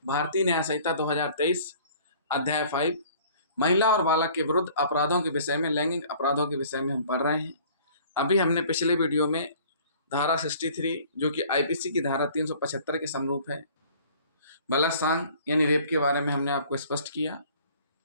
भारतीय न्याय संहिता 2023 अध्याय 5 महिला और बालक के विरुद्ध अपराधों के विषय में, लैंगिक अपराधों के विषय में हम पढ़ रहे हैं। अभी हमने पिछले वीडियो में धारा 63 जो कि आईपीसी की धारा 375 के समरूप है, बलात्कार यानी रेप के बारे में हमने आपको स्पष्ट किया।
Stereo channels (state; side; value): inverted; both; correlation -0.52